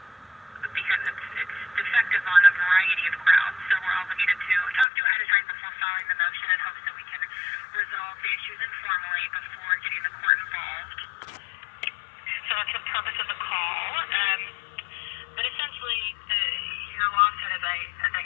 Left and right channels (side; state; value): right; drops out; at 4.9 s